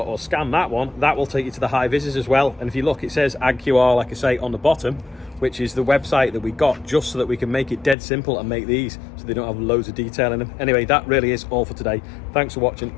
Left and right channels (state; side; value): drops out; right; at 8.0 s